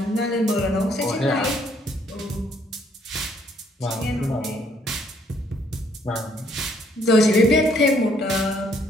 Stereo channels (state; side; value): normal; both; correlation 0.67